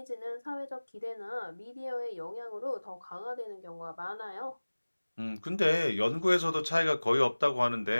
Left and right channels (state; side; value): inverted; both; correlation -1.00